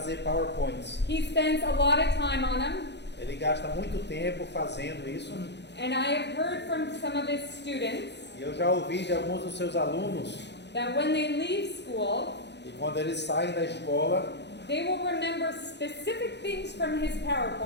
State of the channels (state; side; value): late; right; 0.50 ms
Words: PowerPoints. He spends a lot of time on them, Ele gasta muito tempo fazendo isso. and I have heard from some of his students E eu já ouvi de alguns dos seus alunos that when they leave school, que quando eles saem da escola, they will remember specific things from his